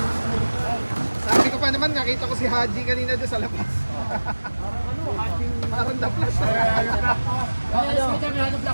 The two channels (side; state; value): both; inverted; correlation -1.00